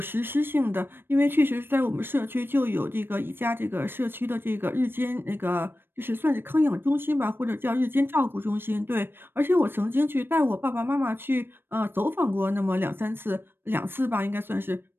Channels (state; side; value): late; left; 0.10 ms